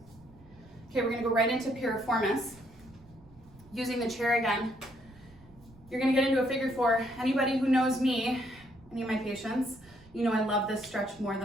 Okay, we're gonna go right into Piriformis. Using the chair again, you're gonna get into a figure 4. Anybody who knows me, any of my patients, you know I love this stretch more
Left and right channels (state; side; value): noise; right; rumble, 25 dB below the sound